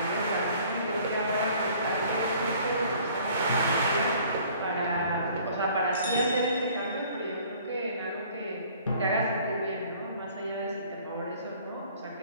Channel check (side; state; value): both; inverted; correlation -0.54